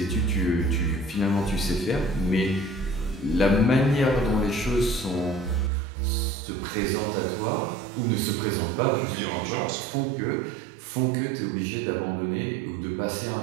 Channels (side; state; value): left; drops out; at 5.7 s